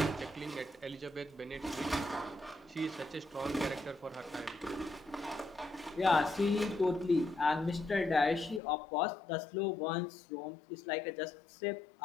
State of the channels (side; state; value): right; drops out; at 8.6 s